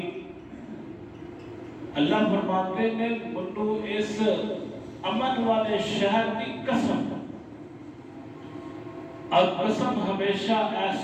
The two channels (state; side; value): identical; both; correlation 1.00